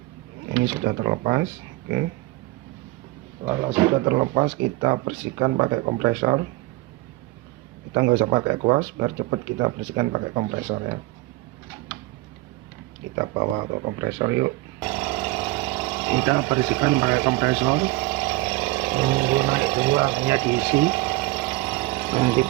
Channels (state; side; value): quieter; left; 19.8 dB